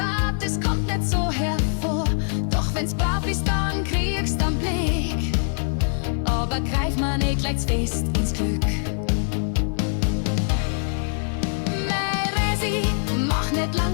es kommt nicht so hervor. Doch wenn's brav ist, dann kriegst du einen Blick. Aber greif mal nicht gleich fest ins Glück. Mach nicht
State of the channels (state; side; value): silent; right; 63 dB below the other